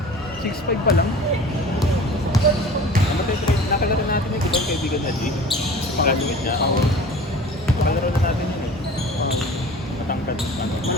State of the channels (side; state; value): both; normal; correlation 0.42